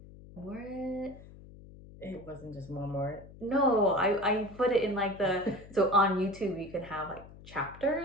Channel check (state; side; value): noise; left; hum, 18 dB below the sound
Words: It wasn't just more. No, I put it in like so on YouTube you can have like